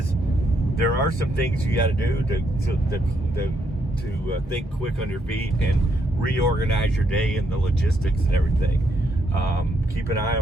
there are some things you got to do to think quick on your feet and reorganize your day and the logistics and everything. Keep an eye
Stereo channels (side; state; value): both; normal; correlation 0.76